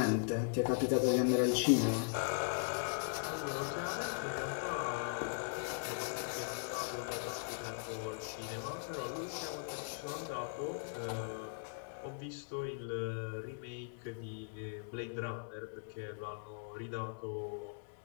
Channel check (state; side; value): silent; right; digital silence